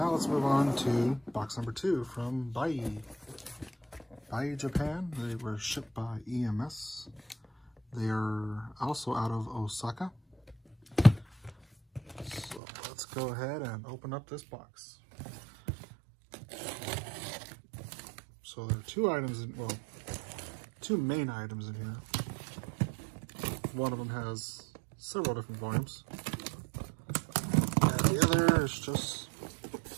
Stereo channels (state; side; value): drops out; left; at 12.6 s